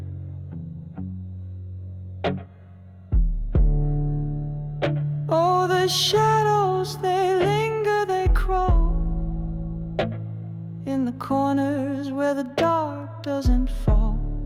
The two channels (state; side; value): identical; both; correlation 1.00